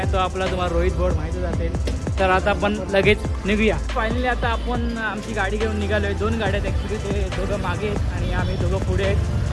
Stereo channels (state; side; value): identical; both; correlation 1.00